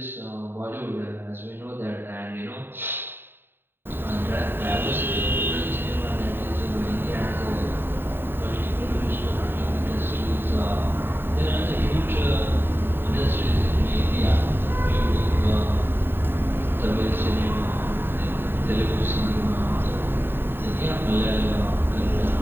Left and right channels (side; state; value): left; late; 0.10 ms